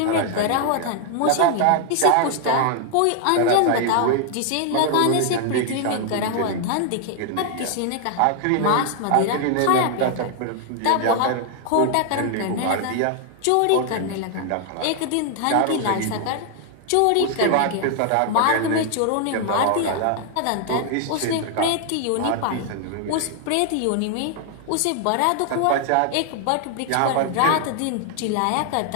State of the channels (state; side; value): different; both; correlation 0.00